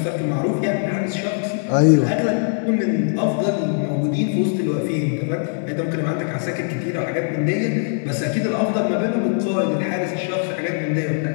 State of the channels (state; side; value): silent; right; 65 dB below the other